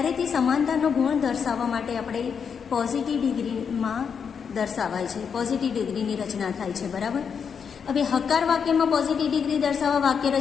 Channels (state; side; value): quieter; right; 6.7 dB